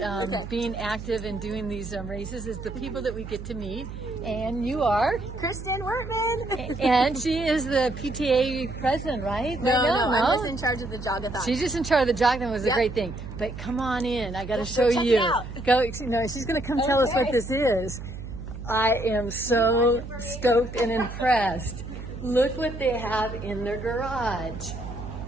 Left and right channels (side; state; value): right; noise; hum, 10 dB below the sound